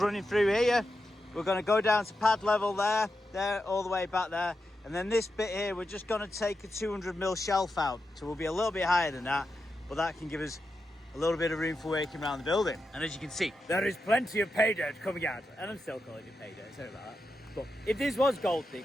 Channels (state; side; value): normal; both; correlation 0.88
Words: running through here. We're going to go down to pad level there, all the way back there. And then this bit here, we're just going to take a 200mm shelf out. So we'll be a little bit higher than that, but that can give us a little bit of room for working around the building. And as you can see, there is plenty of pay dirt coming out. And I'm still calling it pay dirt, sorry about that. But if this was gold